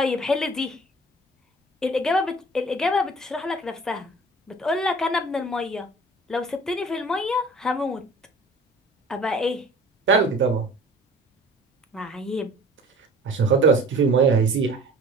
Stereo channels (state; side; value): normal; both; correlation 0.46